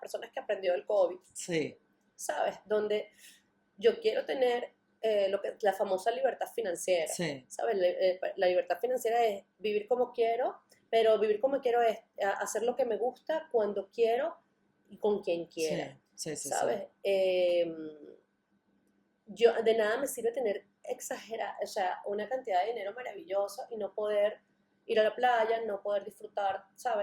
personas que aprendió del COVID. Sí. ¿Sabes? Donde yo quiero tener la famosa libertad financiera. Sí. ¿Sabes? La libertad financiera es vivir como quiero, pero vivir como quiero es hacer lo que me gusta, cuando quiero y con quien quiera. Sí, ¿sabes? Sí. Yo, de nada me sirve tener una cantidad de dinero maravillosa y no poder ir a la playa, no poder disfrutar,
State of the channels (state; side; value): identical; both; correlation 1.00